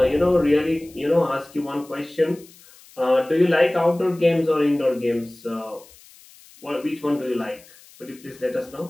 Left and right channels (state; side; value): noise; left; hiss, 24 dB below the sound